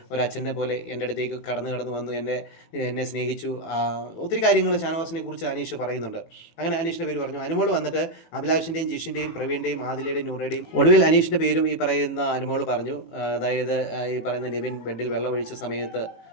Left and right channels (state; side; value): late; right; 18 ms